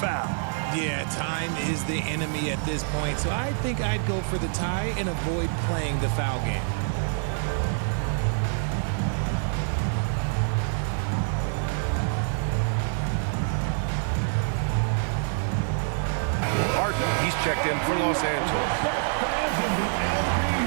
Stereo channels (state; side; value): silent; left; digital silence